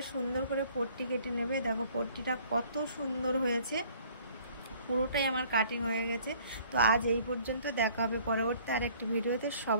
সুন্দর করে পট্টি কেটে নেবে। দেখো পট্টিটা কত সুন্দর হয়েছে, পুরোটাই আমার কাটিং হয়ে গেছে। তো আজ এই পর্যন্ত, দেখা হবে পরবর্তী আরেকটি ভিডিওতে।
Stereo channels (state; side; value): inverted; both; correlation -0.56